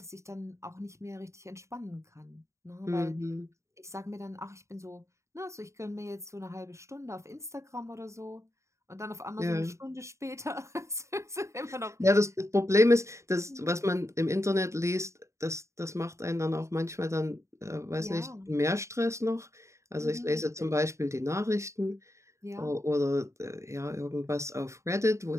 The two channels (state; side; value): late; left; 0.14 ms